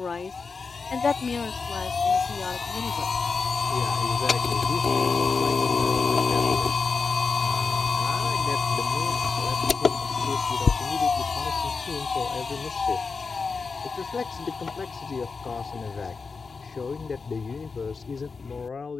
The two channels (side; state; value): right; quieter; 4.8 dB